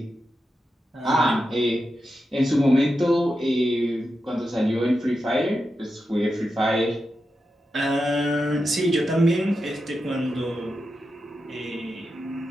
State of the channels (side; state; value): both; normal; correlation 0.89